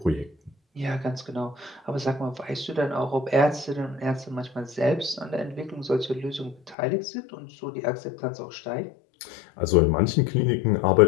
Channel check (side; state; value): right; drops out; at 6.8 s